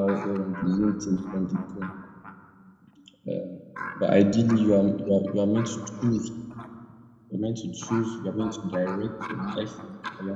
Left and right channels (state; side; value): identical; both; correlation 1.00